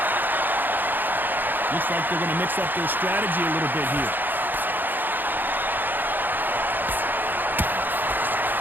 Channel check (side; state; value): left; late; 0.089 ms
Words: Looks like they're going to mix up their strategy a little bit here.